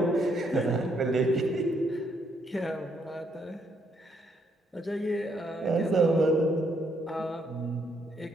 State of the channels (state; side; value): normal; both; correlation 0.73